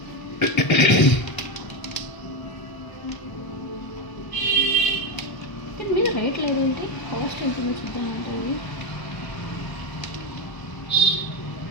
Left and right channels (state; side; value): late; right; 1.0 ms